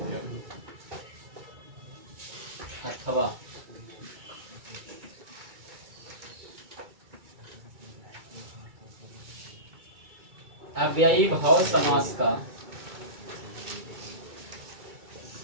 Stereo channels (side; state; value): left; late; 2.3 ms